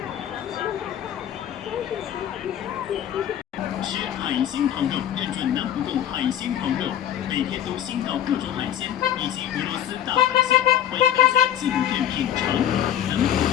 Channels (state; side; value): quieter; right; 10.8 dB